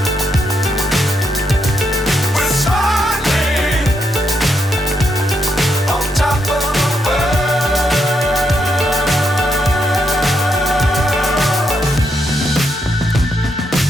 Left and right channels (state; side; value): normal; both; correlation 0.79